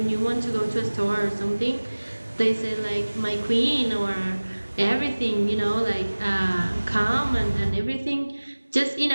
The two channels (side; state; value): both; inverted; correlation -1.00